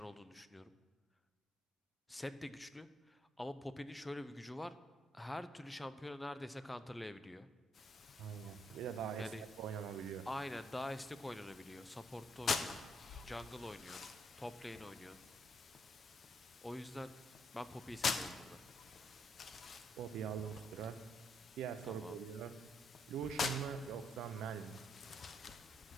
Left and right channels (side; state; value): both; normal; correlation 0.75